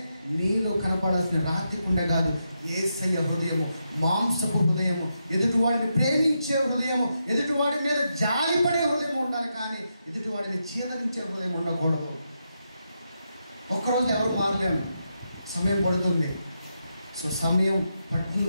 నీలో కనపడాల్సిన రాతి గుండె కాదు, యేసయ్య హృదయము మాంసపు హృదయము, ఎదుటివాడిని ప్రేమించే హృదయము, ఎదుటివాడి మీద జాలిపడే హృదయం ఉండాలి, కానీ ఎదుటివాడిని చీదరించే హృదయం ఉండకూడదు. ఒక్కరోజు ఎవరు మారలేము, సమయం పడుతుంది. సో సమయం పడుతుంది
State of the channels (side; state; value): both; inverted; correlation -0.84